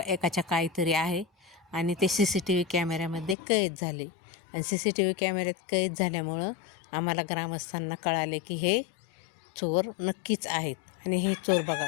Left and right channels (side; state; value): right; drops out; at 3.4 s